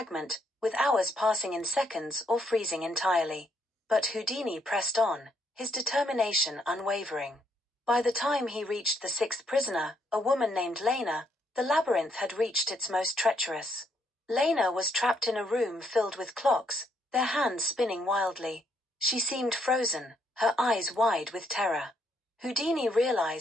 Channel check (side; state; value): both; normal; correlation 0.73